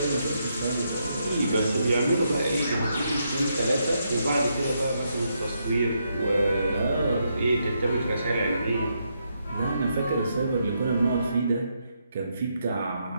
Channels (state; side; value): inverted; both; correlation -0.79